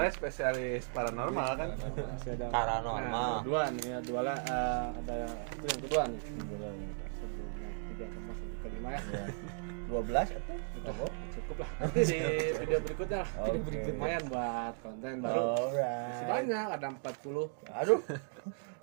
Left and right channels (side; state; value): left; silent; 54 dB below the other